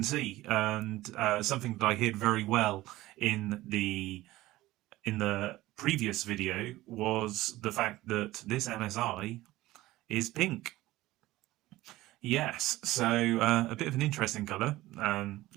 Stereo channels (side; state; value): left; quieter; 17.3 dB